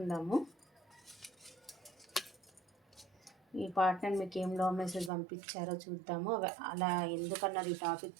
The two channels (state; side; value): drops out; left; at 5.1 s